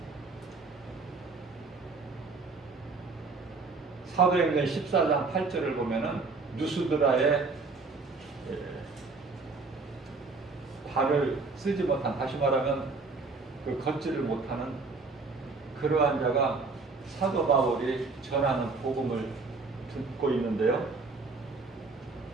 사도행전 14장 8절을 보면은 누스드라의 발을 쓰지 못한, 다시 말하면 그 걷지를 못하는 그러한 자가 사도 바울이 전하는 복음을 듣고 있는데요.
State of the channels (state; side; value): quieter; left; 4.1 dB